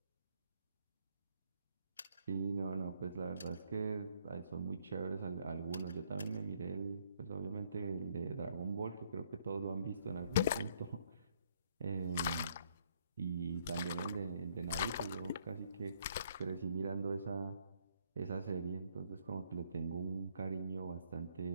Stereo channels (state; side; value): inverted; both; correlation -0.67